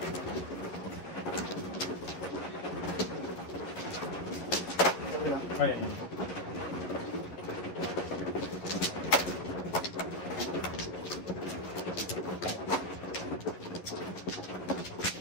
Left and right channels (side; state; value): right; late; 11 ms